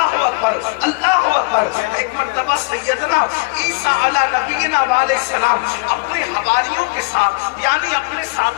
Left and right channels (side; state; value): right; quieter; 29.8 dB